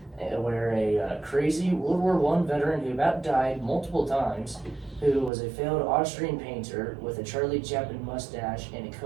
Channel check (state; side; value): drops out; left; at 5.3 s